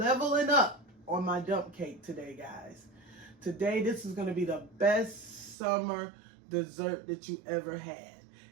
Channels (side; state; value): left; drops out; at 5.6 s